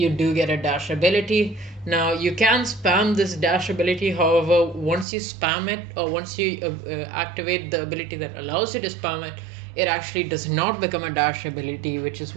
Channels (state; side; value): drops out; left; at 5.1 s